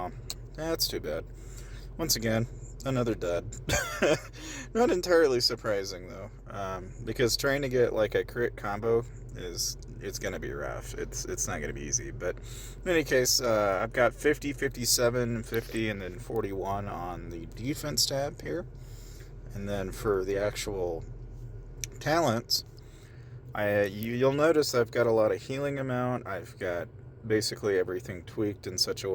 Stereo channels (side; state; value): both; identical; correlation 1.00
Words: that's too bad. Once again, another dud. Not entirely surprising though, because trying to get like a crit combo it's gonna be rough. It's not gonna be easy. But in any case, I've got 50, 57, 50, and then 41 on the defense tab here. And then for the actual talents, you'll notice I've got a lot of healing amount. I've got basically everything tweaked in such a